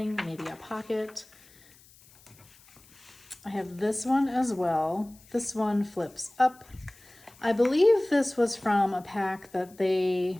maybe a pocket. I have this one as well. This one flips up. I believe this was from a pack that they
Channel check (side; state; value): left; noise; hiss, 26 dB below the sound